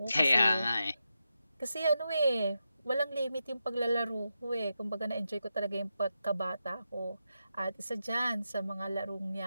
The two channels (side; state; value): both; inverted; correlation -0.88